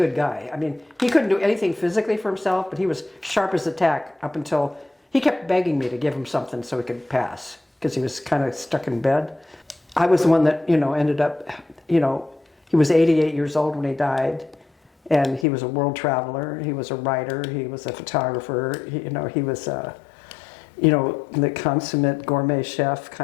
guy. I mean, he couldn't do anything physically for himself, but he was sharp as a tack up until he kept begging me to give him something so he could pass, because he was kind of stuck in bed. I was the one that, ended up, he was 88 years old when he died. And he was a world traveler. He was a writer. He was a photographer. He was the consummate gourmet chef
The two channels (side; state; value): right; drops out; at 15.5 s